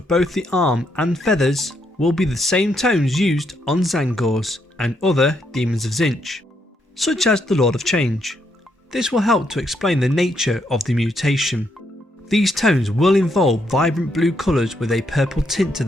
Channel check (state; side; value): normal; both; correlation 0.76